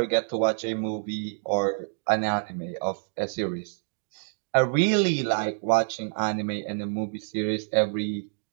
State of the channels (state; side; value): silent; left; digital silence